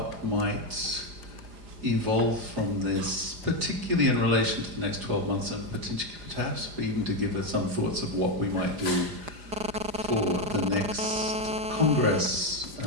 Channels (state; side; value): late; left; 4.9 ms